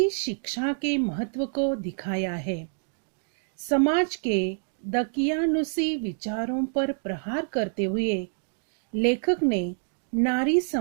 शिक्षा के महत्व को दिखाया है। समाज के दकियानुसी विचारों पर प्रहार करते हुए लेखक ने नारी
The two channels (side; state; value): left; silent; digital silence